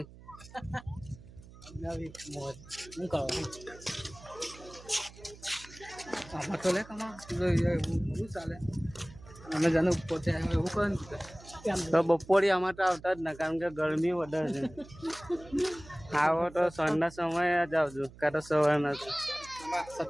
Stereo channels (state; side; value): noise; right; hum, 20 dB below the sound